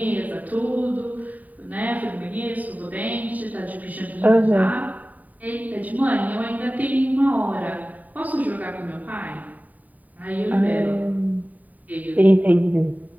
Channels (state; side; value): late; left; 0.076 ms